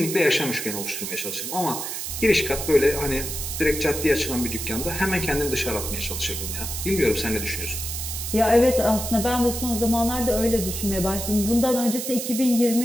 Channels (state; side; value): noise; right; hiss, 5 dB below the sound